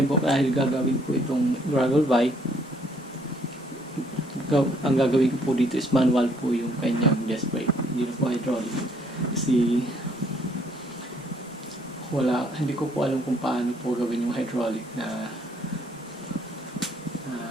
po, dahil gagawin po itong gravel bike, ang gagawin ko po dito is manual po yung kanyang disc brake. Hindi na po hydraulic. Kasi hindi ko po alam kung paano po gawin yung hydraulic na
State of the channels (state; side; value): normal; both; correlation 0.65